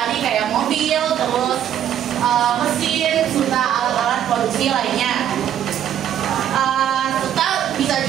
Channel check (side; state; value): left; quieter; 10.3 dB